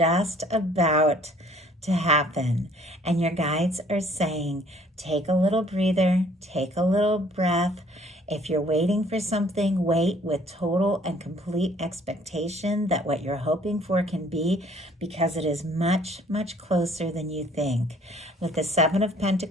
about to happen. And your guides are saying, take a little breather, take a little breath. If you're waiting for something, wait with total and complete expectation that what you're hoping for can be, because it is much, much closer than you think. With the 7 of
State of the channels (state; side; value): normal; both; correlation 0.58